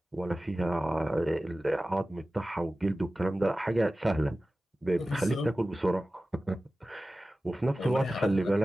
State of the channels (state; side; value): normal; both; correlation 0.96